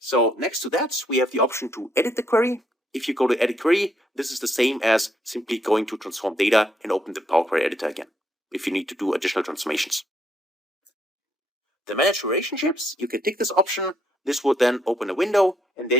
next to that, we have the option to edit the query. If you go to edit query, this is the same as simply going to transform data and open the Power Query editor again, if you need to do additional transformations. The manage relationships, you can tick this option. This would then open a window, and there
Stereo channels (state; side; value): normal; both; correlation 0.73